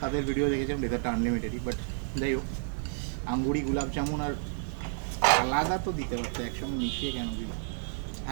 তাদের ভিডিও দেখেছিলাম ডেজার্টটা আনলিমিটেডই, বাট যাই হোক, আঙ্গুরি গোলাপ জামুন আর আলাদা তো দিতে পারতো, একসঙ্গে মিশিয়ে কেন দিল?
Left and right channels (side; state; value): left; silent; 57 dB below the other